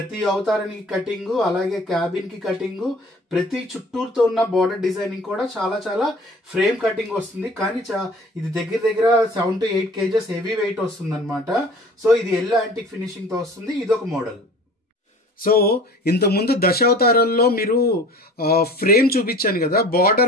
అవతారానికి కటింగ్, అలాగే క్యాబిన్ కి కటింగ్, ప్రతి చుట్టూరుతో ఉన్న బార్డర్ డిజైనింగ్ కూడా చాలా చాలా ఫ్రేమ్ కటింగ్ వస్తుంది. కానీ ఇది దగ్గర 7 to 8 kgs హెవీ వెయిట్ వస్తుంది అనమాట. సో ఇది ఎల్లో యాంటిక్ ఫినిషింగ్ తో వస్తుంది. ఇదొక మోడల్. సో ఇంతకుముందు దశావతారాల్లో మీరు ఫ్రేమ్ చూపించాను కదా,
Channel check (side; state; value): both; normal; correlation 0.45